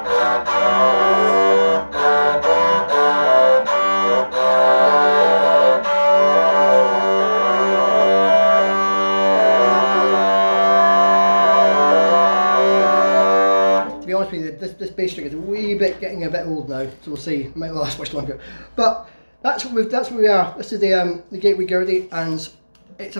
honest with you, this bass string is a wee bit getting a bit old now, so we'll see. It might not last much longer. But that's where we are. This is the Gateway Gurdy, and it's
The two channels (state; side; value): inverted; both; correlation -1.00